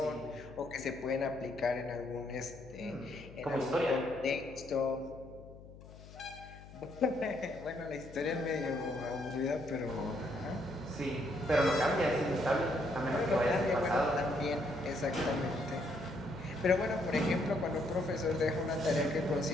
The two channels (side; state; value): left; noise; hum, 18 dB below the sound